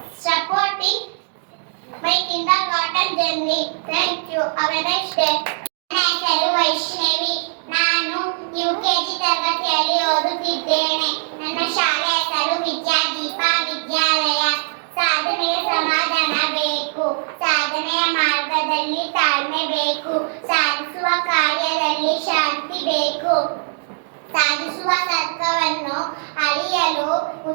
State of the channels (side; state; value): left; silent; digital silence